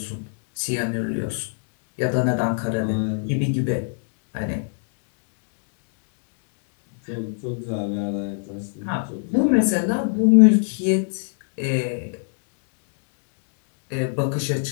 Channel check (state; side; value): silent; right; digital silence